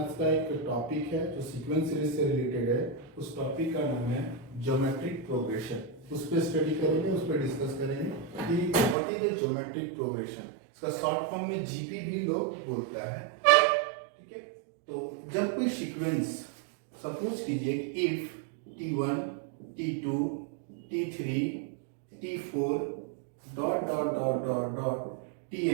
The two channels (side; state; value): left; drops out; at 9.0 s